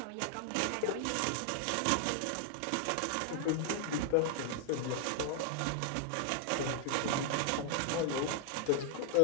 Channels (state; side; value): different; both; correlation -0.01